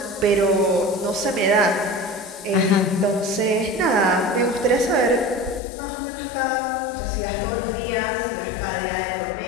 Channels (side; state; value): right; drops out; at 5.6 s